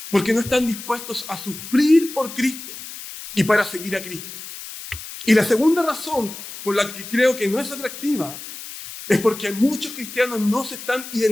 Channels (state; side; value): noise; left; hiss, 12 dB below the sound